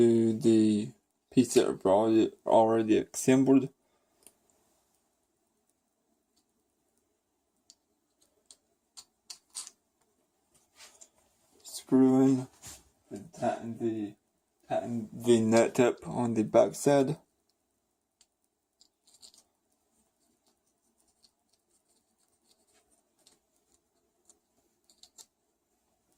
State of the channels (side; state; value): both; identical; correlation 1.00